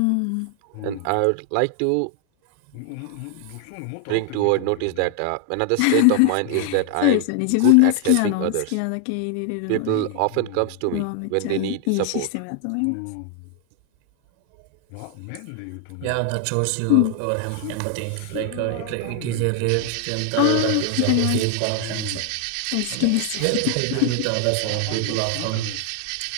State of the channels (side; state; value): both; different; correlation 0.00